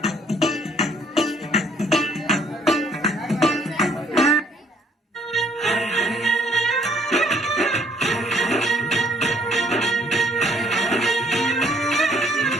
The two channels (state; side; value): normal; both; correlation 0.63